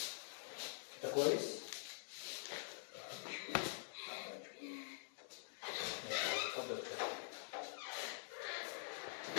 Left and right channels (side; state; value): right; silent; digital silence